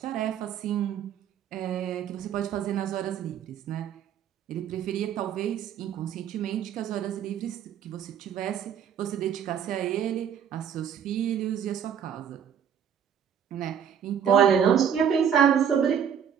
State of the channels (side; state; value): left; quieter; 8.4 dB